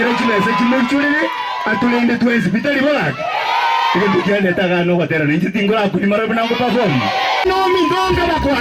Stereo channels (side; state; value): both; identical; correlation 1.00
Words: chimese chimuchulire atulende twenzi bitali bolaki. Ige bujane tagano kwatera ninji tingora kuni marabu nango perform. No mindonga